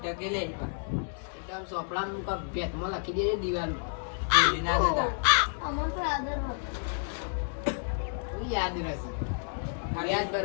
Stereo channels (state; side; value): silent; right; digital silence